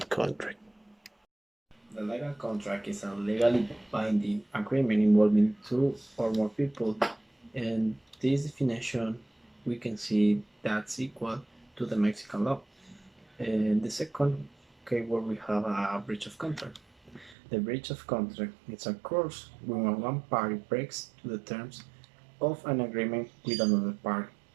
contract. The legal contract is a legally binding agreement involving two or more people, and this definition we can see that's equal to the Mexican law. In the second keyword we have a breach of contract. The breach of contract is occurs when one party breaks the terms of an agreement with another party.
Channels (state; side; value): drops out; left; at 17.4 s